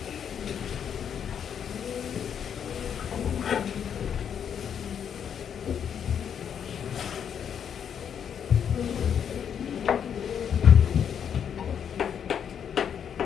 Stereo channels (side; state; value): right; quieter; 8.2 dB